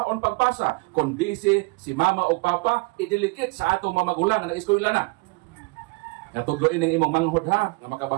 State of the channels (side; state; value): left; quieter; 27.4 dB